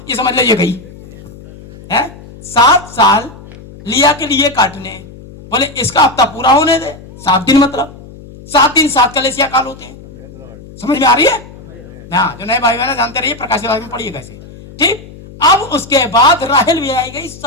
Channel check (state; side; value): noise; left; hum, 18 dB below the sound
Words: ये समझ ले, ये गई है। 7 साल लिया के लिए काटने। बोले इसका हफ्ता पूरा होने दे, 7 दिन, मतलब 7 दिन 7 कलेसिया काल होते हैं। समझ में आ रही है? हाँ, जो नए भाई बहन जानते रहिए, प्रकाश में पढ़िए कैसे। ठीक। अब उसके बाद राहेल भी आई गई